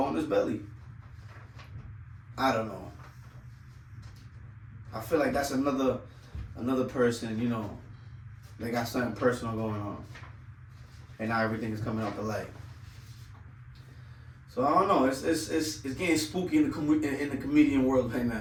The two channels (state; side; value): identical; both; correlation 1.00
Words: his belly. I don't know. I feel like that's another person, you know, they got something personal going on. And now everything is coming out the light. So I don't know. It's getting spooky in the comedian world right